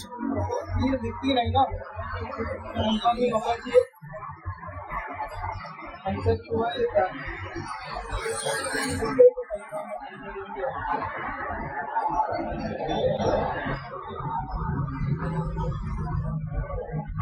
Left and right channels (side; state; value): both; identical; correlation 1.00